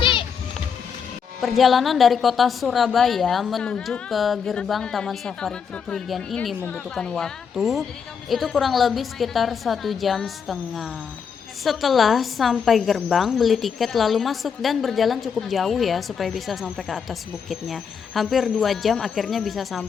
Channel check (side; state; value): right; quieter; 6.7 dB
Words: Perjalanan dari kota Surabaya menuju ke gerbang Taman Safari Prigen ini membutuhkan waktu itu kurang lebih sekitar 1,5 jam. Setelah sampai gerbang, beli tiket lalu masuk dan berjalan cukup jauh ya supaya bisa sampai ke atas bukitnya. Hampir 2 jam akhirnya bisa